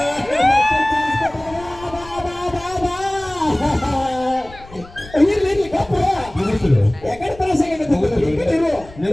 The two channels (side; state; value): left; noise; rumble, 20 dB below the sound